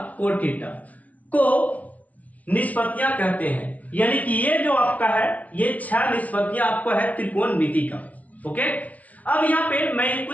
कोट थीटा को निष्पत्तियां कहते हैं। यानी कि ये जो आपका है, ये 6 निष्पत्तियां आपको है त्रिकोणमिति का। ओके, अब यहाँ पे मैं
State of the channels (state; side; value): late; right; 0.069 ms